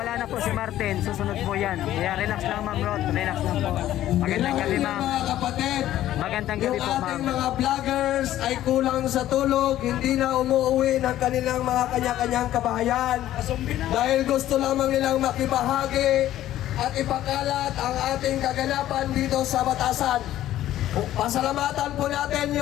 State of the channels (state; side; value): quieter; right; 13.2 dB